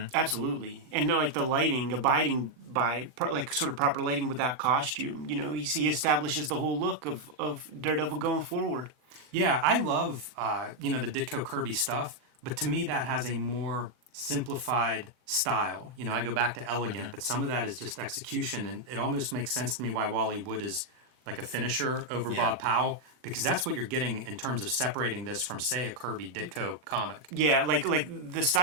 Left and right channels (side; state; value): left; late; 39 ms